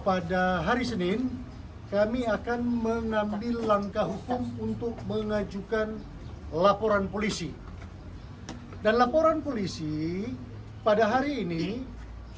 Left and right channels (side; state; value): both; identical; correlation 1.00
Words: hari Senin kami akan mengambil langkah hukum untuk mengajukan laporan polisi. Dan laporan polisi pada hari ini